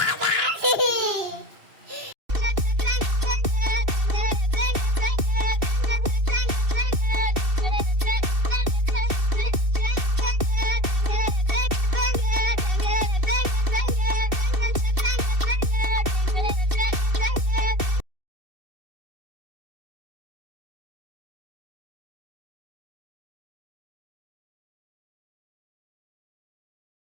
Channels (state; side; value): late; left; 2.7 ms